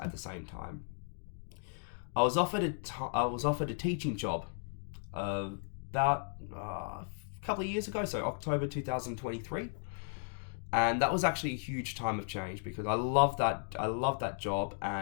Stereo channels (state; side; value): silent; right; digital silence